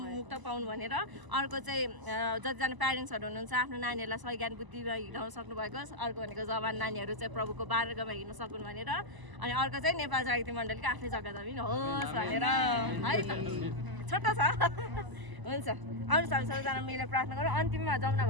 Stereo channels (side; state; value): left; late; 1.0 ms